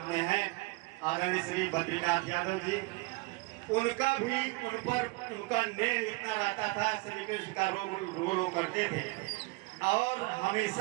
में है, आदरणीय श्री बद्रीनाथ यादव जी, उनका भी उनका नेह इतना रहता था, श्री कृष्ण का रोल करते थे। और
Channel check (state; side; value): quieter; left; 25.0 dB